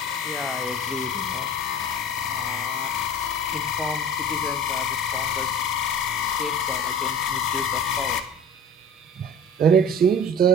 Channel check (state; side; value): normal; both; correlation 0.39